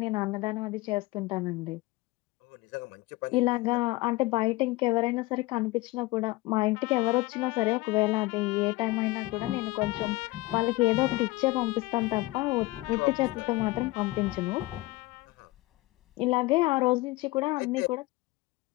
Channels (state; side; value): quieter; right; 20.9 dB